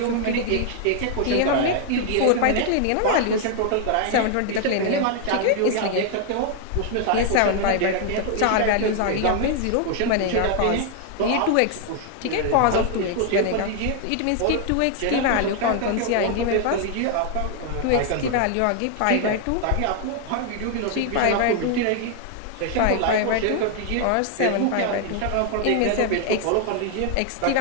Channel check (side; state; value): both; different; correlation 0.00